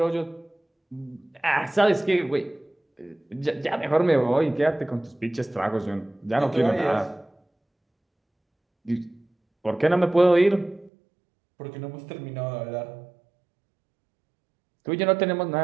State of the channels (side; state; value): left; drops out; at 10.9 s